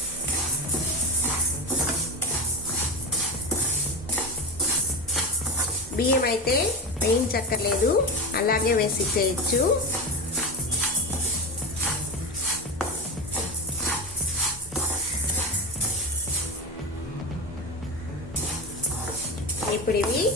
బియ్యం అయితే వేయించక్కర్లేదు, అలాగే వేసి చేయొచ్చు. ఇప్పుడు ఇవి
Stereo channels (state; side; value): normal; both; correlation 0.22